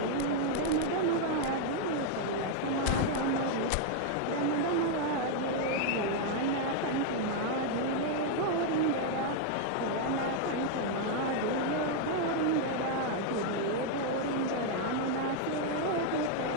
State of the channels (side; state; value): both; different; correlation 0.00